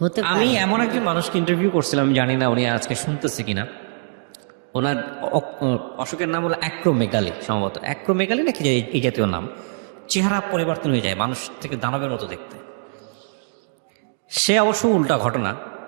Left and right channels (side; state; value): left; silent; digital silence